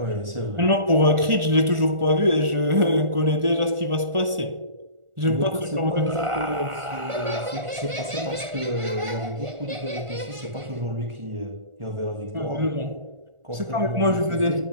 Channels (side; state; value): left; late; 1.4 ms